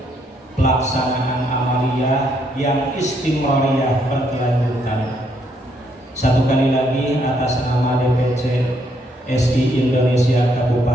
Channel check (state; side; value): normal; both; correlation 0.73